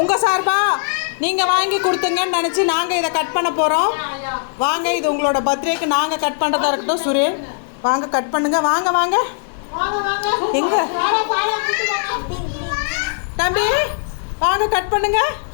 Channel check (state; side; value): silent; right; 56 dB below the other